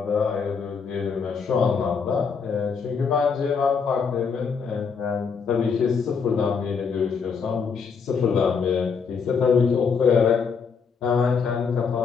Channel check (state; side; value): quieter; right; 5.8 dB